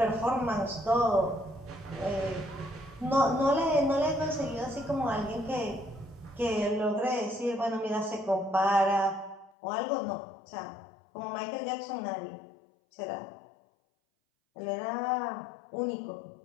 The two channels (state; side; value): drops out; right; at 9.5 s